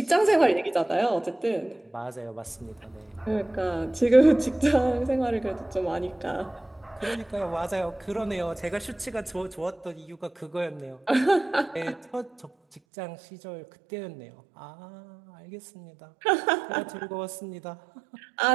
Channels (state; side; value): drops out; left; at 12.8 s